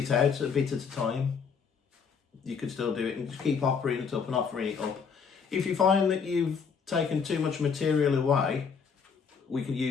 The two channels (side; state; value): right; quieter; 6.1 dB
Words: out a bit at a time, you could still do it and just keep offering it up and offering it up. If you find that you've taken too much material away, we can